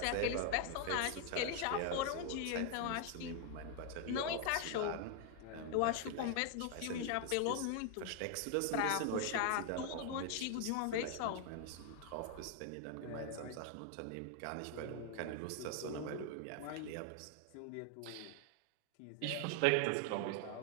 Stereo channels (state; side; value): different; both; correlation 0.00